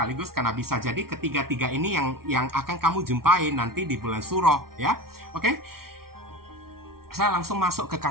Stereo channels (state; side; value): late; left; 0.93 ms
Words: karena bisa jadi ketiga-tiga ini yang akan kamu jumpai nanti di bulan Suro ya. Oke? Saya langsung masuk ke